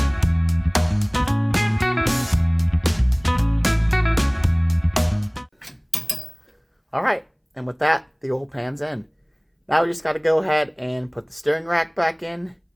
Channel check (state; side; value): identical; both; correlation 1.00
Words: All right, and with that, the oil pan's in. Now we just got to go ahead and put the steering rack back in